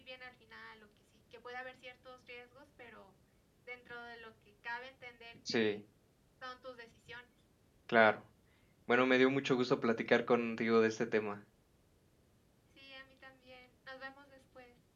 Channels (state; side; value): identical; both; correlation 1.00